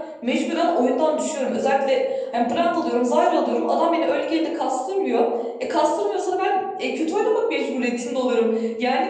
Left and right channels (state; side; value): identical; both; correlation 1.00